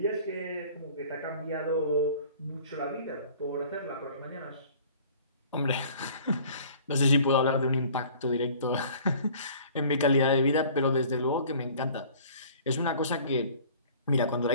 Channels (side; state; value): both; inverted; correlation -0.49